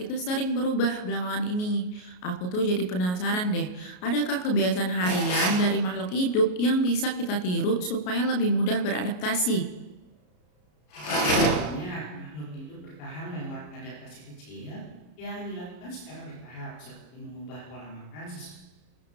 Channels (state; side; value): late; right; 33 ms